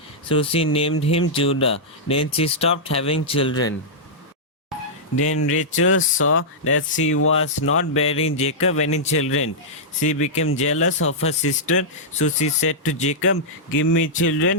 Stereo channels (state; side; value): normal; both; correlation -0.10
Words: So she named him Judah. Then she stopped having children. Then Rachel saw that she was not bearing Jacob any children. She became jealous of her sister, so she said to Jacob, "Give me